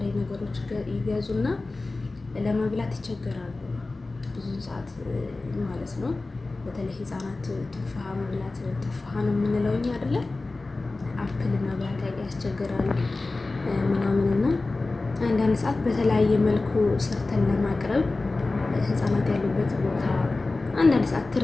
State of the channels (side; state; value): right; quieter; 3.3 dB